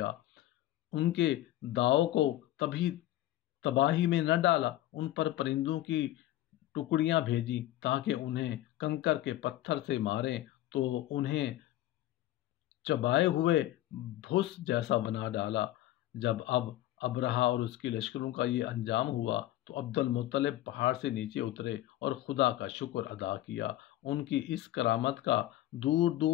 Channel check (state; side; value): quieter; right; 14.7 dB